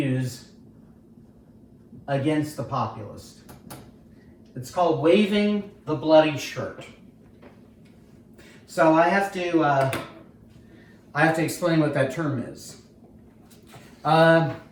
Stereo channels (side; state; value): both; identical; correlation 1.00